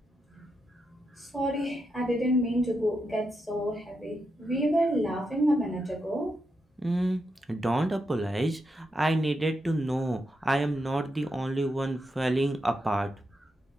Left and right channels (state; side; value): normal; both; correlation 0.85